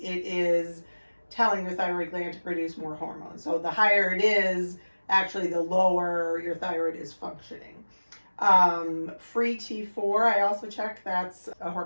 it is telling your thyroid gland to produce more hormone. So the higher it is, actually the lower your thyroid is functioning. Free T4, I also check. That's a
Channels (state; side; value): inverted; both; correlation -1.00